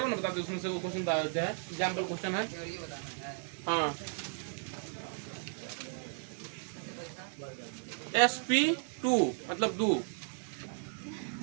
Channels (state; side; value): silent; left; 54 dB below the other